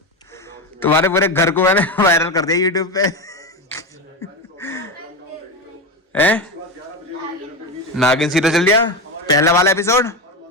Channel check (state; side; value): normal; both; correlation 0.18